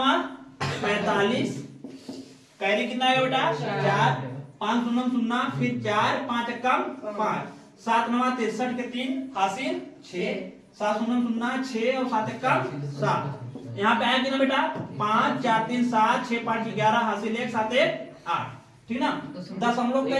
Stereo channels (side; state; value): both; identical; correlation 1.00